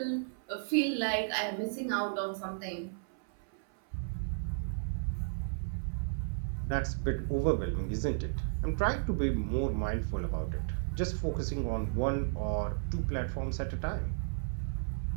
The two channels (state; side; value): silent; left; 55 dB below the other